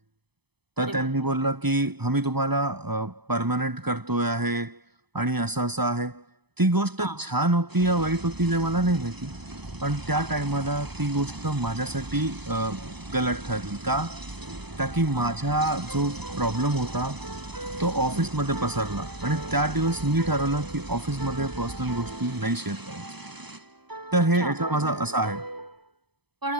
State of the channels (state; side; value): late; left; 0.98 ms